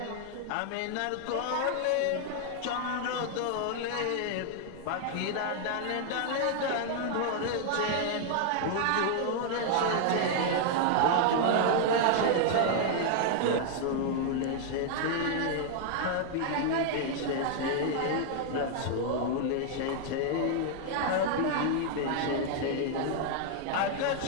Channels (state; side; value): different; both; correlation 0.00